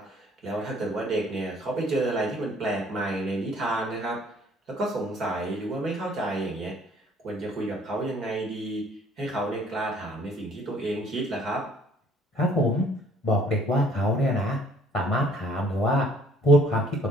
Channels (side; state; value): both; normal; correlation 0.59